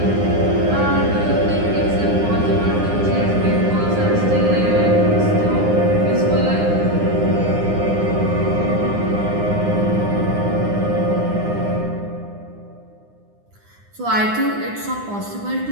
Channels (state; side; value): late; left; 9.8 ms